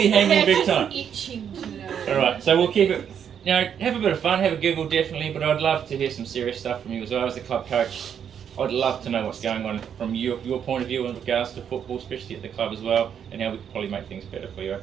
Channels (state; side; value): quieter; left; 8.3 dB